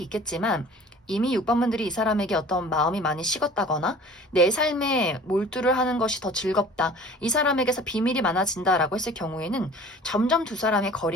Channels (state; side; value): normal; both; correlation 0.46